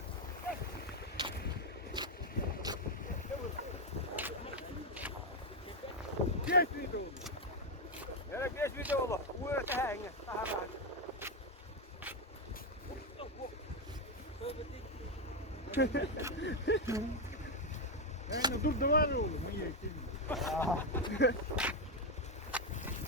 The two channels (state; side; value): normal; both; correlation 0.05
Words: Geç video. Yere geç video olur. Bu öte henge. Yani dur da var oğlum. İyi.